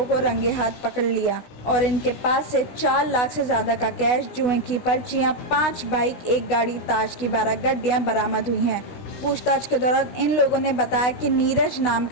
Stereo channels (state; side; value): late; right; 16 ms